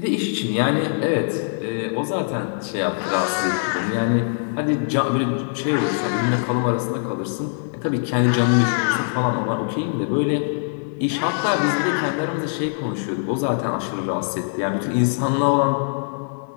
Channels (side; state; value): right; silent; digital silence